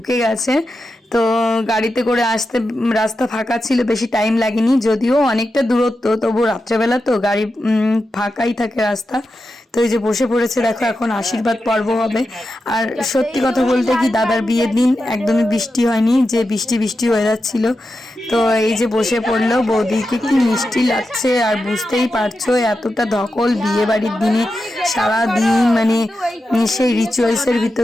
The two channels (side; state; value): both; normal; correlation 0.90